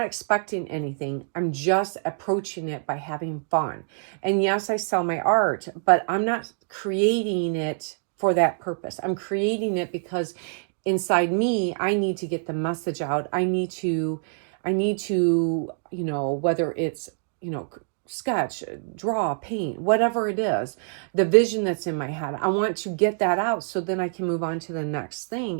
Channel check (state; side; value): silent; left; digital silence